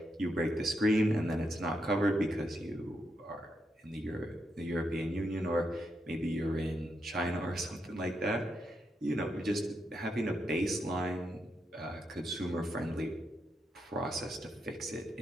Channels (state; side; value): normal; both; correlation 0.82